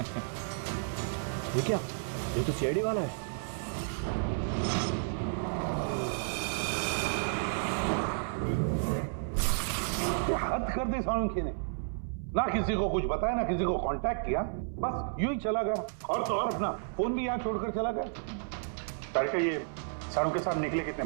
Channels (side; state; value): left; silent; 56 dB below the other